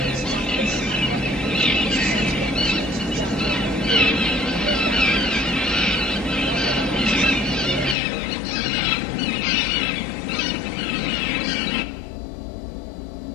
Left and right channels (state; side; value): drops out; right; at 8.0 s